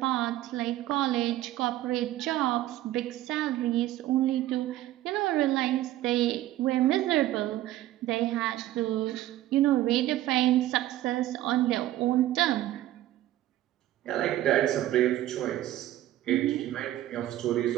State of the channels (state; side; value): quieter; left; 14.5 dB